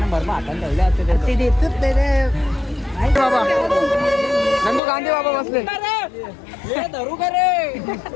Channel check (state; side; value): drops out; right; at 4.8 s